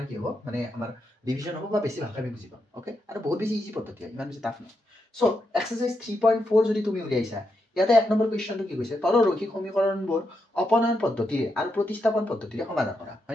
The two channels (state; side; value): normal; both; correlation 0.83